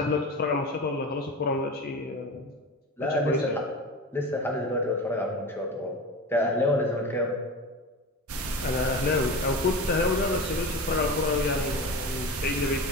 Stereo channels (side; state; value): both; normal; correlation 0.29